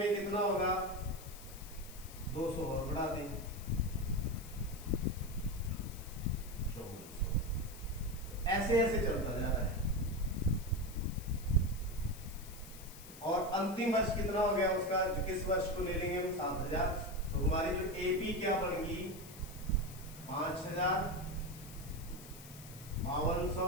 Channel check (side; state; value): left; noise; hiss, 16 dB below the sound